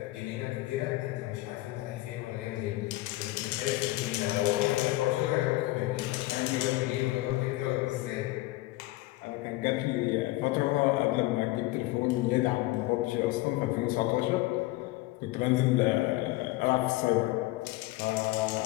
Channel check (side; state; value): right; quieter; 19.0 dB